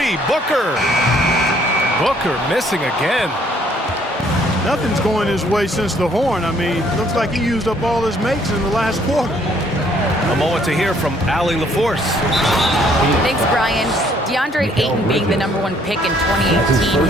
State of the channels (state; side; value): normal; both; correlation 0.64